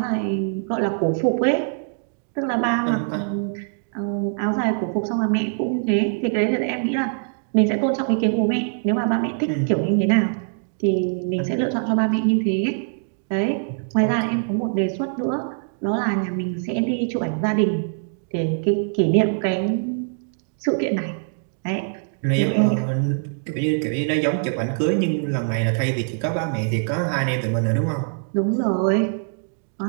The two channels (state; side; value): silent; left; digital silence